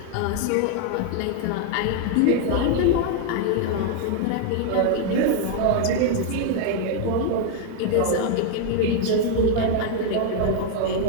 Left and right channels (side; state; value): both; different; correlation 0.00